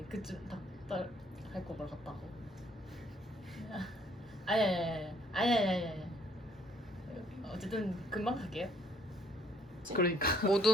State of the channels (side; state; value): both; normal; correlation 0.64